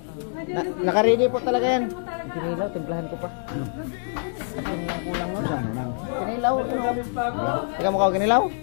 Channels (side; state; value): right; silent; digital silence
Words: Nakaready po talaga yan. Pinilaw, timplahan ko pa. Kulang mo siya. Pinilaw. Teka mo ka kinilaw?